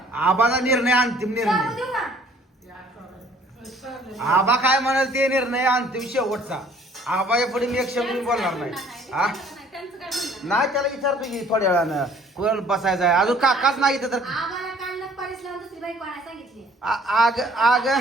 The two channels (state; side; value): normal; both; correlation 0.56